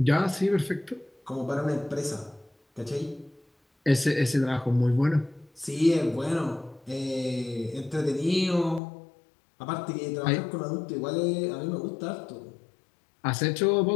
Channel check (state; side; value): drops out; right; at 8.8 s